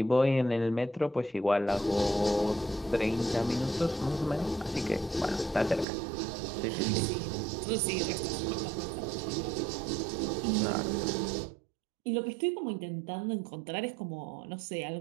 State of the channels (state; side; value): drops out; left; at 5.9 s